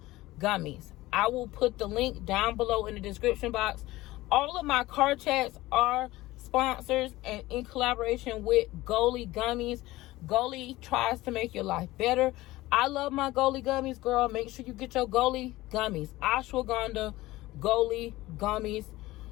gummies. I will put the link down below in the description box. All of my card chats are sponsors and in collaboration with GOLI gummies. GOLI tries to make your life better. I love my GOLI gummies, girl. Make sure you get your GOLI gummies. Ashwagandha GOLI gummies.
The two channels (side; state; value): right; quieter; 18.1 dB